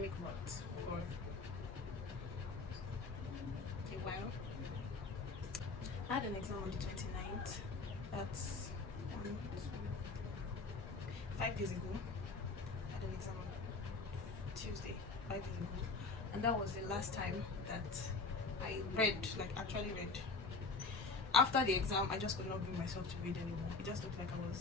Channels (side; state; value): right; quieter; 3.9 dB